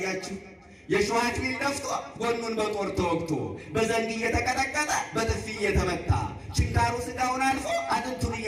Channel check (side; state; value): both; identical; correlation 1.00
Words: የሾህ አክሊል ደፍቶ ጎኑን በጦር ተወግቶ በዘንግ እየተቀጠቀጠ በጥፊ እየተመታ ችንካሩ ሥጋውን አልፎ አጥንቱን